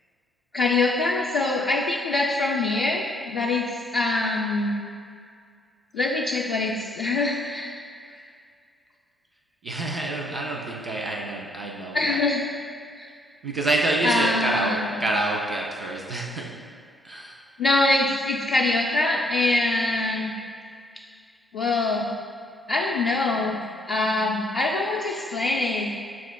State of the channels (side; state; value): both; normal; correlation 0.68